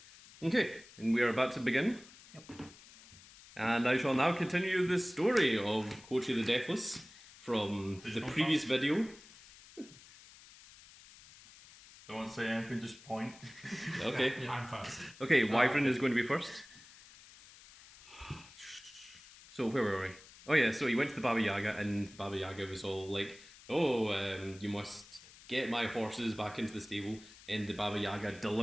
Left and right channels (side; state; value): left; noise; hiss, 21 dB below the sound